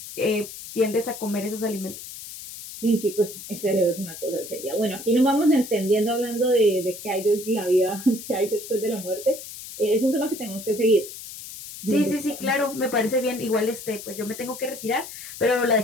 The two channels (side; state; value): left; noise; hiss, 12 dB below the sound